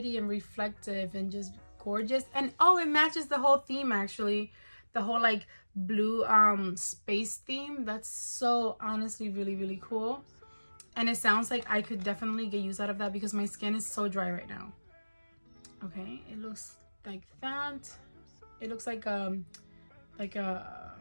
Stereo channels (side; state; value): both; inverted; correlation -1.00